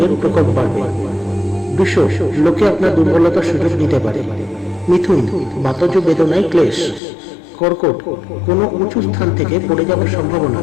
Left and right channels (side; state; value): right; drops out; at 7.0 s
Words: প্রকোপ বাড়বে। বৃষ, লোকে আপনার দুর্বলতার সুযোগ নিতে পারে। মিথুন, বাতজ বেদনায় ক্লেশ। কর্কট, কোনো উঁচু স্থান থেকে পড়ে যাওয়ার সম্ভাবনা।